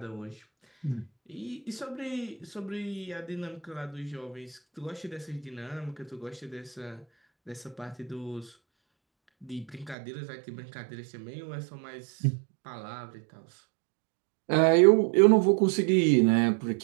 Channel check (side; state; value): left; drops out; at 10.0 s